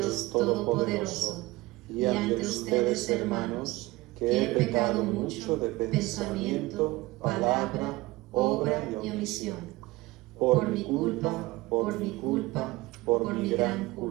Todopoderoso y ante ustedes, hermanos, que he pecado mucho de pensamiento, palabra, obra y omisión. Por mi culpa, por mi gran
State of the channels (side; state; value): left; quieter; 20.3 dB